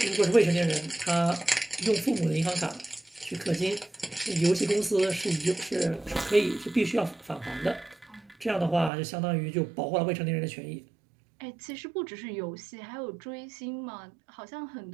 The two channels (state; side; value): drops out; left; at 8.9 s